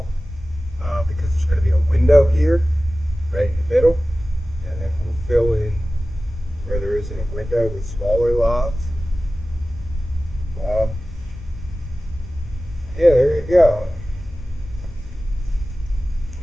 because there's going to be a window here, right in the middle, and then we'll fill in where there isn't a window with smaller logs. Yeah, there you go.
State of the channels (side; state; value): both; normal; correlation 0.96